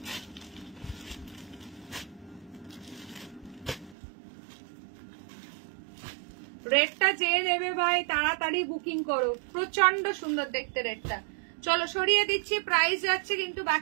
রেডটা যে নেবে ভাই তাড়াতাড়ি বুকিং করো, প্রচন্ড সুন্দর দেখতে রেডটা। চলো সরিয়ে দিচ্ছি, প্রাইস যাচ্ছে কিন্তু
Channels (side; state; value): left; drops out; at 4.0 s